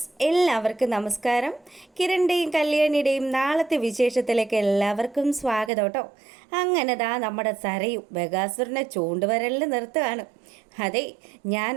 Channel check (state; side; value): drops out; left; at 5.7 s